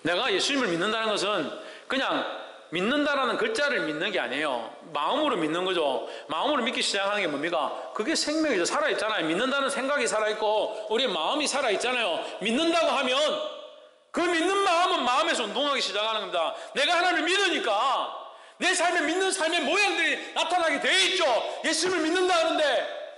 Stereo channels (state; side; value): identical; both; correlation 1.00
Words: 내가 예수님을 믿는다는 것은 그냥 믿는다라는 글자를 믿는 게 아니에요. 마음으로 믿는 거죠. 마음으로 믿기 시작하는 게 뭡니까? 그게 생명이죠. 살아있잖아요. 믿는다는 생각이 살아있고 우리의 마음이 살아있잖아요. 믿는다고 하면 그 믿는 마음은 마음에서 운동하기 시작하는 겁니다. 내가 하나님을 믿으니까 내 삶에 믿는 삶의 모양들이 나타나게 돼 있죠. 예수님을 믿는다 하는데